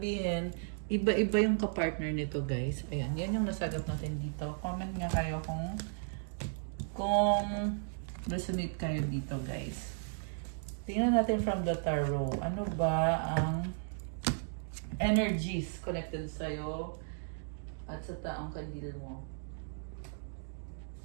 iba-iba yung kapartner nito, guys. Ayan, yan yung nasagap natin dito. Comment nga kayo kung resonate kayo dito, guys. Tingnan natin from the tarot. Ano ba ang energies connected sa'yo at sa taong kadil mo?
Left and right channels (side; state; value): left; silent; digital silence